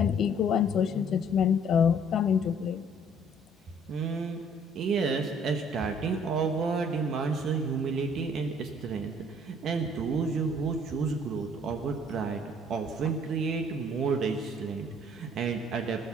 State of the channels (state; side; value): normal; both; correlation 0.58